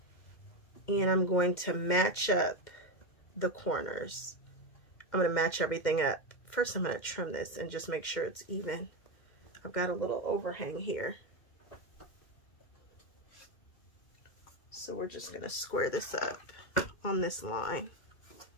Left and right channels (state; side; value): late; right; 2.1 ms